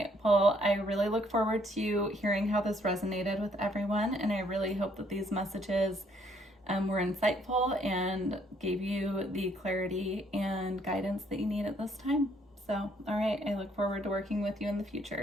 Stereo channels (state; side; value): normal; both; correlation 0.67